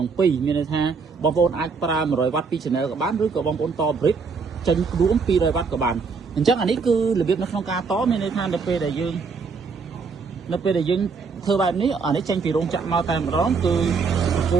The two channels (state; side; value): quieter; left; 5.0 dB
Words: ឹង 2 មានន័យថាបងប្អូនអាចប្រើ100 វ៉ាត់ពី channel ក៏បានឬក៏បងប្អូនត brick ចេញរួម200 វ៉ាត់ក៏បានអញ្ចឹងអានេះគឺរបៀបនៅក្នុងការតមានន័យថានៅពេលដែលយើងធ្វើបែបនេះអានេះចេញពីរោងចក្រមកតែម្ដងគឺបកគោ